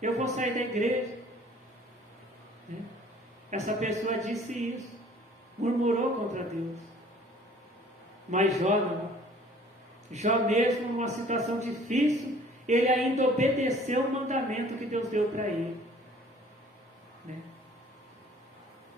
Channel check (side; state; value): both; normal; correlation 0.53